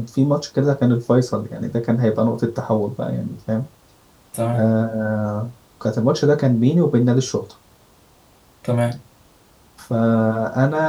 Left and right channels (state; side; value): identical; both; correlation 1.00